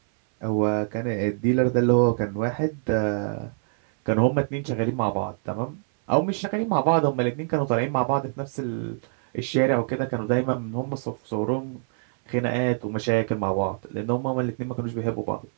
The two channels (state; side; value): silent; left; 62 dB below the other